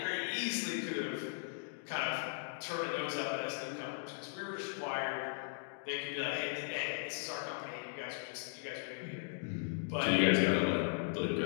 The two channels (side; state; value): right; silent; digital silence